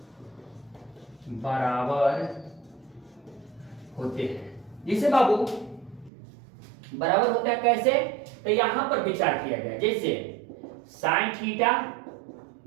बराबर होते हैं। जिसे बाबू बराबर होता है कैसे? तो यहां पर विचार किया गया, जैसे साइन थीटा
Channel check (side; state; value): left; drops out; at 6.1 s